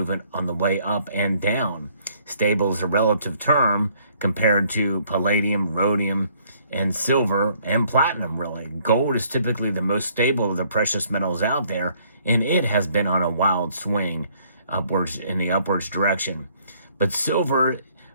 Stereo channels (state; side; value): inverted; both; correlation -0.64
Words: on the way up and down. Stable is a relative term compared to palladium, rhodium, and silver and platinum, really. Gold is typically the most stable of the precious metals out there, and it has been on a wild swing upwards in the upwards direction. But silver